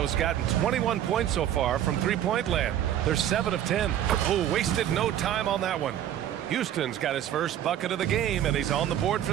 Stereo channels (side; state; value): left; quieter; 11.1 dB